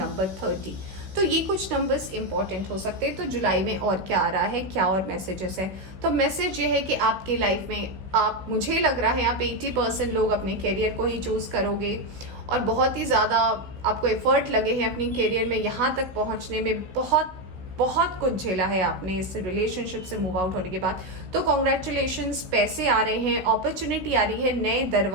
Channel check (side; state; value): left; late; 16 ms